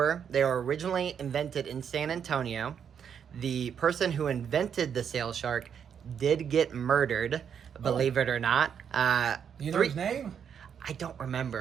They were originally invented in San Antonio. The person who invented the sail shark did get murdered, believe it or not. Do you know his name? I don't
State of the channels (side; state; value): left; quieter; 7.8 dB